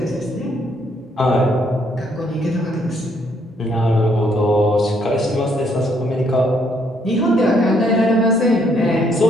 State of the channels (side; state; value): both; normal; correlation 0.70